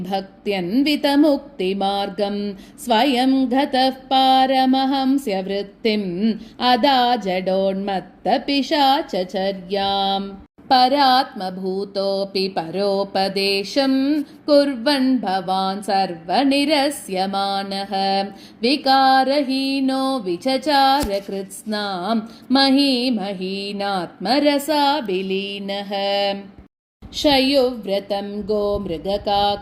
स्वयं गतः पारमहंस्य वृत्तिम् अदा जडोन्मत्तपिशाचचर्याम् परात्मभूतोऽपि परोपदेशं कुर्वन् भवान् सर्वनिरस्यमानः विकारहीनो विचचार कृत्स्नां महीमहीनात्मरसाभिलीनः शयुव्रतं गोमृगकाकचर्यां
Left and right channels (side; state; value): both; identical; correlation 1.00